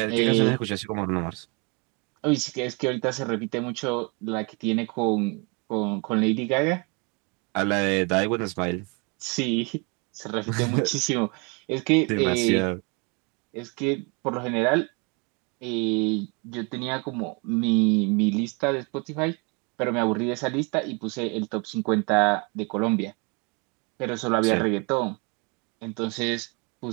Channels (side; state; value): left; quieter; 32.0 dB